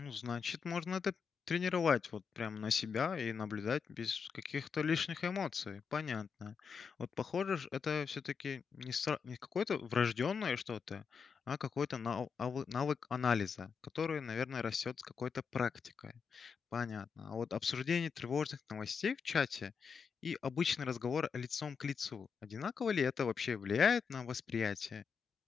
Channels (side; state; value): right; quieter; 6.0 dB